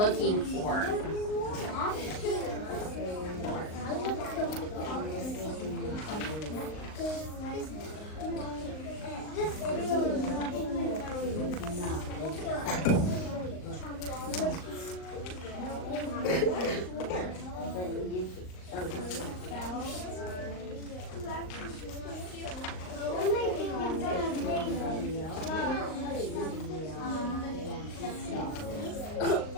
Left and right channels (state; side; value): late; right; 38 ms